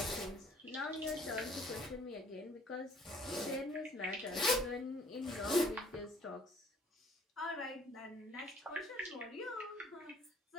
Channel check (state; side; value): normal; both; correlation 0.57